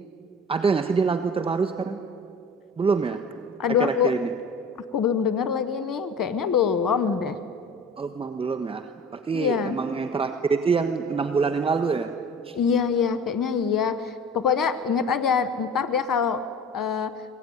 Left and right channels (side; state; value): both; normal; correlation 0.40